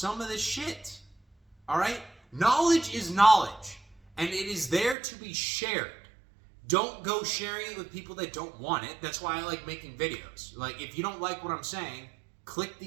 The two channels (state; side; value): drops out; left; at 5.0 s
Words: of this shit. All right? Knowledge is knowledge, and it is there to be shared. Don't go sharing it with people that don't want it. That's why I like making videos. Like, if you don't like what I'm saying, click